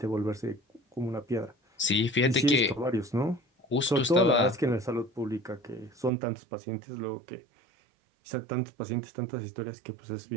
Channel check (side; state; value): left; drops out; at 6.1 s